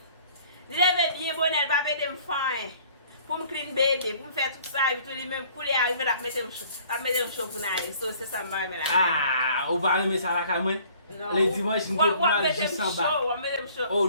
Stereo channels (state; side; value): inverted; both; correlation -0.55